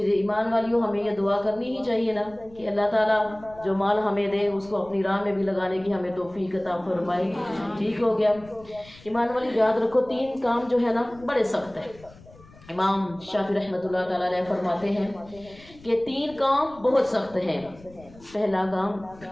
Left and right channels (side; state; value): left; noise; rumble, 22 dB below the sound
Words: ایمان والیوں، ہمیں یہ دعا کرنی ہی چاہیے نا کہ اللہ تعالیٰ جو مال ہمیں دے اس کو اپنی راہ میں بھی لگانے کی ہمیں توفیق عطا فرمائے۔ ٹھیک ہو گیا؟ ایمان والی یاد رکھو، 3 کام جو ہے نا بڑے سخت ہیں۔ امام شافعی رحمۃ اللہ تعالیٰ علیہ فرماتے ہیں کہ 3 کام بہت سخت ہیں۔ پہلا کام،